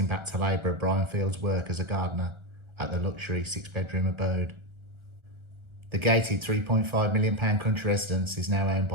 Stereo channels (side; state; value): left; late; 1.4 ms